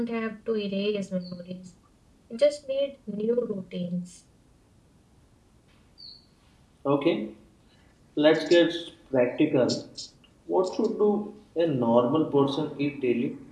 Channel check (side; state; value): both; identical; correlation 1.00